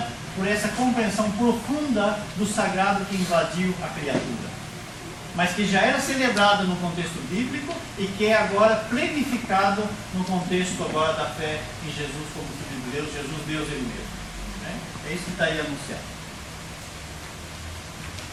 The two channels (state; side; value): identical; both; correlation 1.00